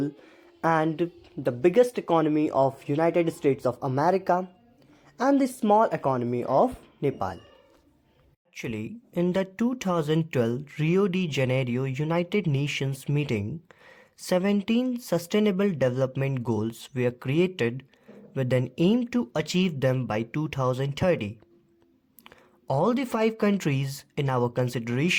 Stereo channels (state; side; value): identical; both; correlation 1.00